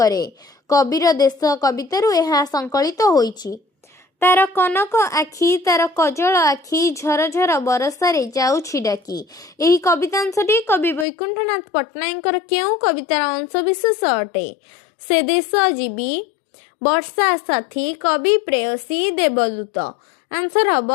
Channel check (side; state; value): right; drops out; at 11.1 s